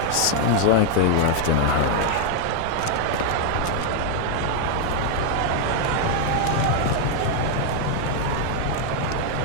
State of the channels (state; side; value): different; both; correlation 0.00